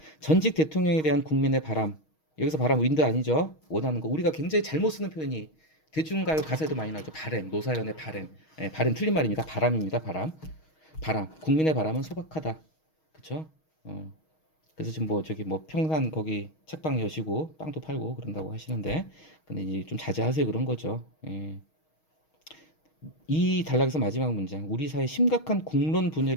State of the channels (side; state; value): right; late; 6.4 ms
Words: 전직 대통령에 대한 국민의 바람. 여기서 바람 윈드 아니죠. 원하는 거. 우리가 굉장히 잘못 쓰는 표현이 대중가요 가사에도 많이 나오죠. 바램, 노사연의 바램. 바램 틀린 말입니다. 바람입니다. 바람. 국민의 바람은 소박하다. 그쵸? 그래서 지금 평산 거기 책방 여시고 빵도 팔고 그런다고 하시는데, 근데 이제 좀 자제하세요 그런 거죠. 예. 이 단락에서 마지막 문장. 우리 사회 심각한 국론